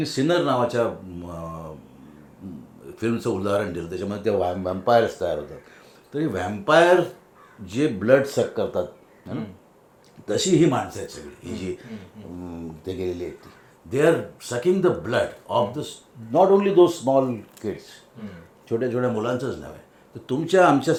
सिनर नावाच्या फिल्मचं उदाहरण दिलं, त्याच्यामध्ये त्या व्हॅम्पायर्स तयार होतात. तरी व्हॅम्पायर जे ब्लड सक करतात है ना, तशी ही माणसं आहेत सगळी, ही जी ते गेलेली आहेत ती. They are sucking the blood of the not only those small kids, छोट्या छोट्या मुलांचंच नव्हे, तर तुमच्या आमच्या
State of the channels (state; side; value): identical; both; correlation 1.00